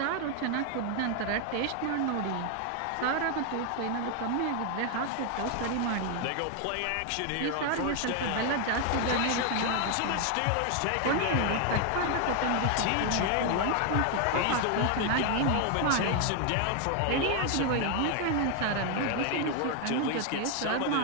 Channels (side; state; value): both; different; correlation 0.00